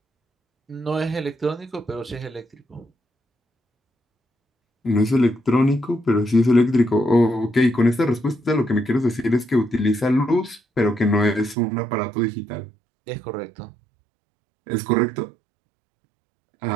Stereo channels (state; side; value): drops out; left; at 11.6 s